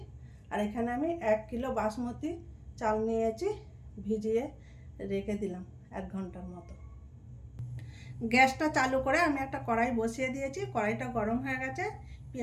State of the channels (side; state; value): both; identical; correlation 1.00